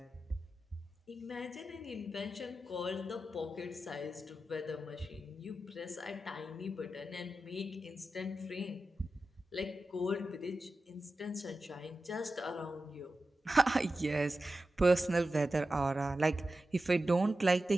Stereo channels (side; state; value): both; normal; correlation 0.93